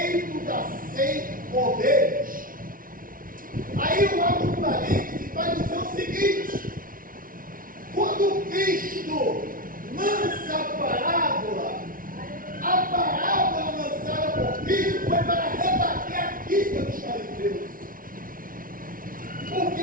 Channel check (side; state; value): left; late; 0.41 ms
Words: das 100 ovelhas. Aí eu abro um parênteses para dizer o seguinte: quando Cristo lança a parábola lançada por Cristo foi para